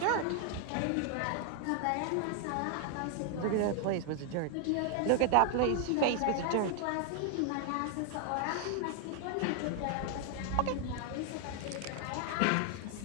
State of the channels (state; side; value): different; both; correlation 0.00